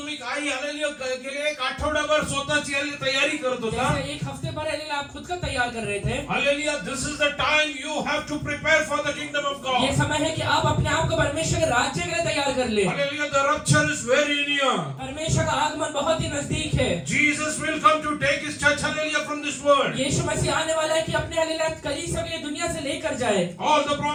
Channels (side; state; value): both; identical; correlation 1.00